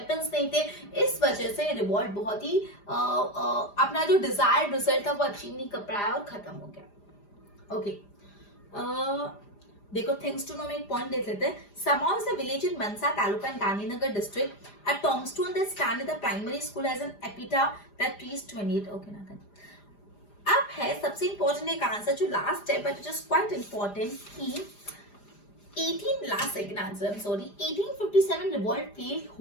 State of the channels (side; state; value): right; late; 4.9 ms